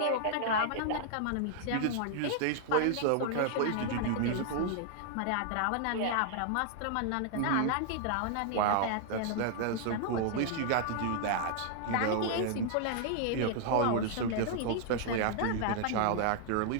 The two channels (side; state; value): both; different; correlation 0.00